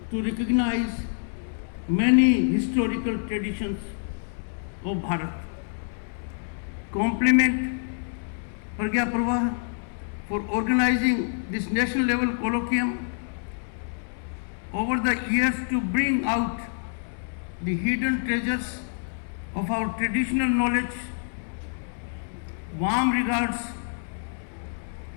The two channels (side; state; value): right; silent; 60 dB below the other